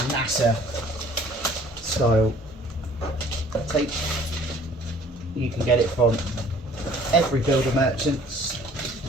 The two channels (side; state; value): both; normal; correlation 0.54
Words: NASA style tape. You can get it from every builder merchants